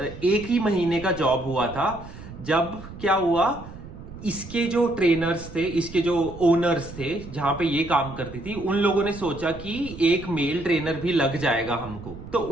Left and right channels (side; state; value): right; noise; rumble, 14 dB below the sound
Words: 1 ही महीने का जॉब हुआ था, जब क्या हुआ, इसके जो ट्रेनर्स थे, इसके जो ओनर्स थे जहां पे ये काम करती थी, उन लोगों ने सोचा कि एक मेल ट्रेनर भी लग जाएगा हमको। तो